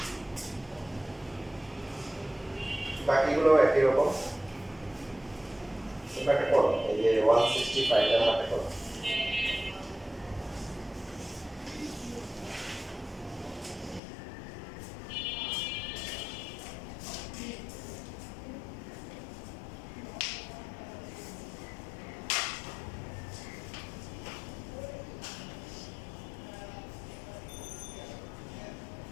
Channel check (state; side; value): drops out; right; at 14.0 s